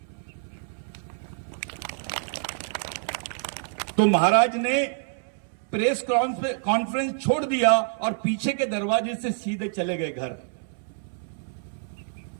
तो महाराज ने प्रेस कॉन्फ्रेंस छोड़ दिया और पीछे के दरवाजे से सीधे चले गए घर,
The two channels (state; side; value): silent; left; 60 dB below the other